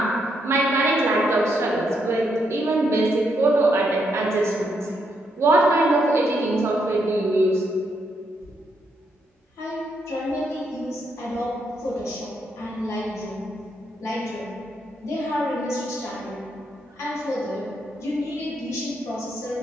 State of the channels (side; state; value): both; normal; correlation 0.77